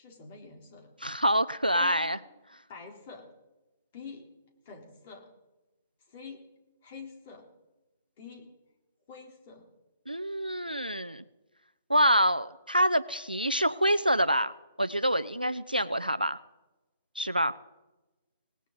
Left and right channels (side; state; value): both; inverted; correlation -0.74